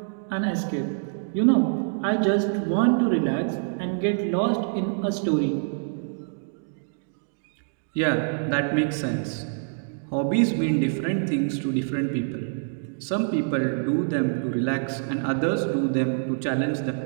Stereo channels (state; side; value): silent; left; digital silence